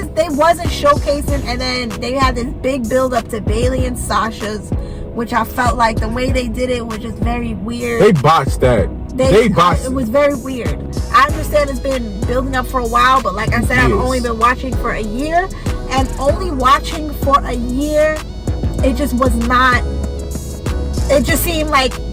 they wasn't showcasing, and then they had this big build up to Bailey and Sasha's, which I felt like the way they did it was just very weird. They botched that. They botched it. Was very weird. I understand it's been building up for a while, but like I said, I've only been watching for a year, and only watching for a year, it just was not. It just seemed like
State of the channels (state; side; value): identical; both; correlation 1.00